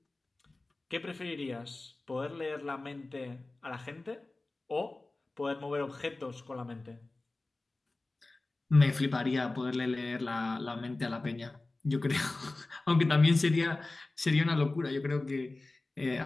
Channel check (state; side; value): quieter; right; 3.1 dB